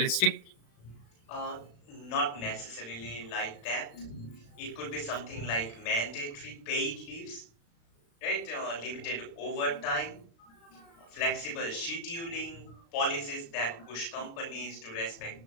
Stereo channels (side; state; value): right; late; 35 ms